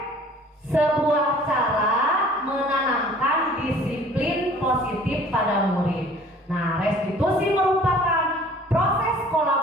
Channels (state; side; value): normal; both; correlation 0.51